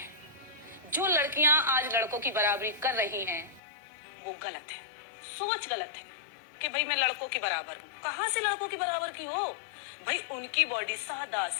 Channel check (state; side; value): drops out; right; at 3.6 s